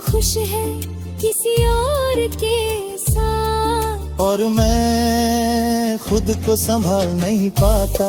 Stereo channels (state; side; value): identical; both; correlation 1.00